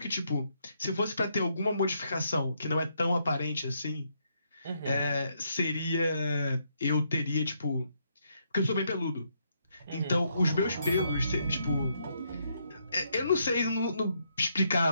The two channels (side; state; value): both; inverted; correlation -0.75